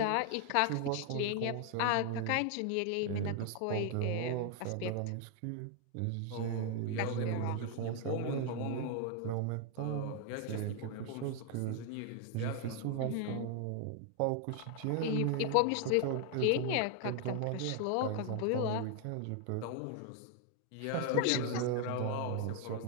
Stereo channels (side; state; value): both; different; correlation 0.00